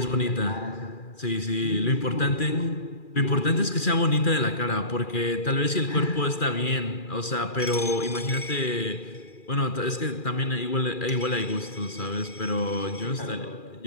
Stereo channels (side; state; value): right; late; 2.4 ms